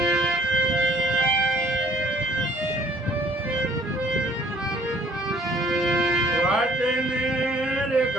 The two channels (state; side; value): normal; both; correlation 0.58